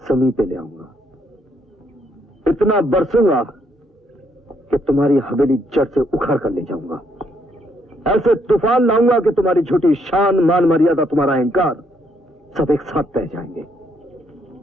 जमीन पे ले आऊंगा, इतना बरसूंगा कि तुम्हारी हवेली जड़ से उखाड़ कर ले जाऊंगा। ऐसे तूफान लाऊंगा कि तुम्हारी झूठी शान, मान मर्यादा, तुम्हारा अहंकार सब एक साथ बह जाएंगे।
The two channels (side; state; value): both; normal; correlation 0.72